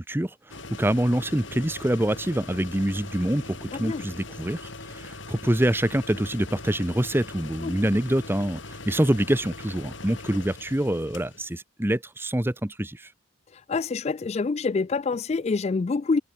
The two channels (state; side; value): normal; both; correlation 0.82